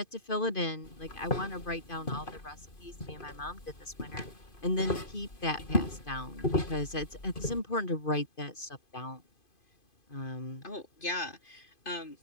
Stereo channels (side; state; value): right; late; 2.5 ms